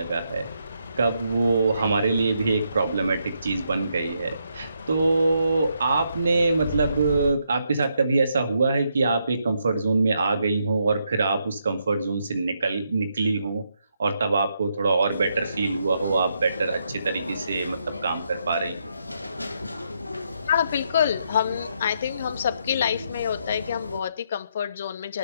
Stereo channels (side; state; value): both; inverted; correlation -0.78